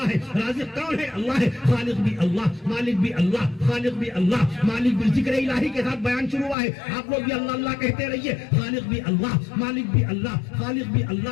ہے. رازق کون ہے؟ اللہ ہے. خالق بھی اللہ, مالک بھی اللہ, خالق بھی اللہ, مالک بھی. ذکر الہی کے ساتھ بیان شروع ہوا ہے, آپ لوگ بھی اللہ اللہ کہتے رہیے. خالق بھی اللہ, مالک بھی اللہ, خالق بھی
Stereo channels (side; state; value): right; drops out; at 6.6 s